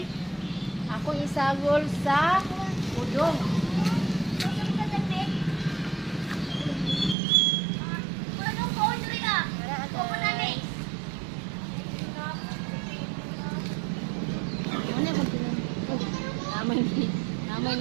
ako isagol sa udong. Namay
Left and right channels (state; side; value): drops out; left; at 7.2 s